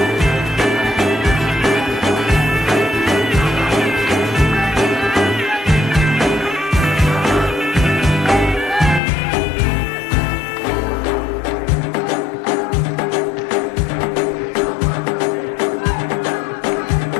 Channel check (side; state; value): right; drops out; at 9.0 s